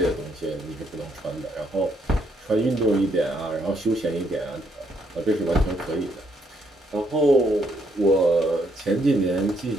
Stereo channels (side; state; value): both; normal; correlation 0.73